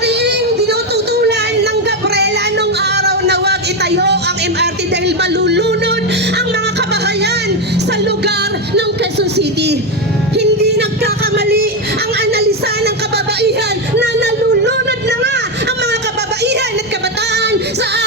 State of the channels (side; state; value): both; normal; correlation 0.09